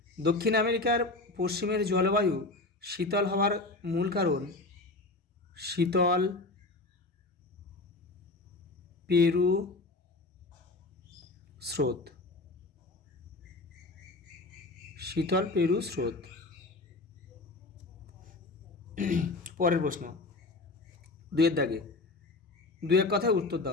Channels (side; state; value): right; quieter; 3.2 dB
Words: দক্ষিণ আমেরিকার পশ্চিমের জলবায়ু শীতল হওয়ার মূল কারণ শীতল পেরু স্রোত। শীতল পেরু স্রোত। পরের প্রশ্ন, দুয়ের দাগে দু এক কথায় উত্তর